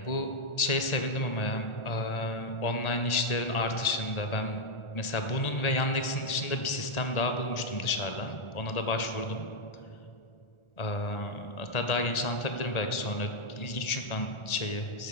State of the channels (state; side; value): late; right; 1.4 ms